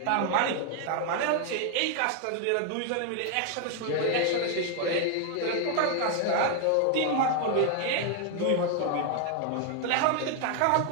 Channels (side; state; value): both; different; correlation 0.00